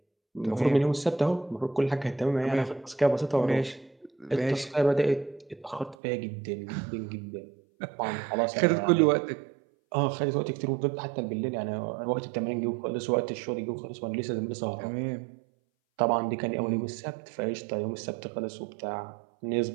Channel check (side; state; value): left; drops out; at 6.0 s